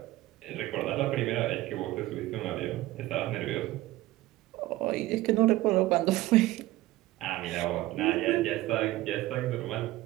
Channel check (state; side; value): quieter; left; 17.1 dB